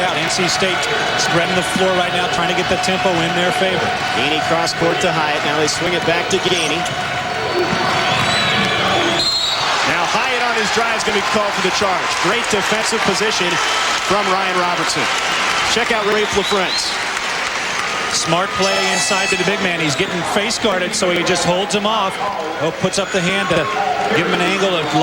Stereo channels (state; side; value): identical; both; correlation 1.00